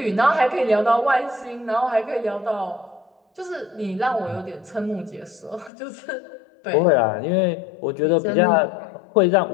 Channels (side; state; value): right; drops out; at 5.7 s